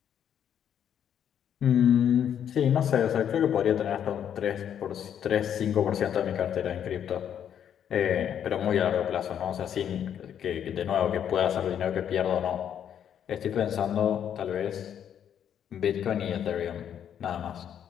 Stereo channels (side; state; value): right; quieter; 9.2 dB